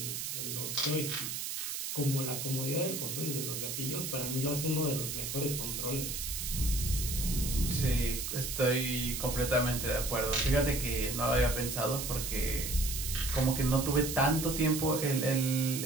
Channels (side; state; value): right; noise; hiss, 4 dB below the sound